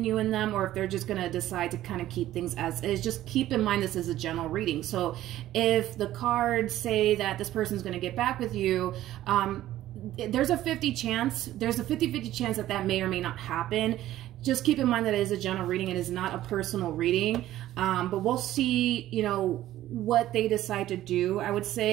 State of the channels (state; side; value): quieter; left; 13.9 dB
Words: you and them, or if they're just going to decide to kind of keep things as is. Just keep in mind this is a general reading. So if the cards say that this person's going to get back with you, there's a 50-50 chance that that may or may not happen. Just keep in mind that it is a general reading. It is not a personal reading. But we'll see, you know, what they decide to do, I would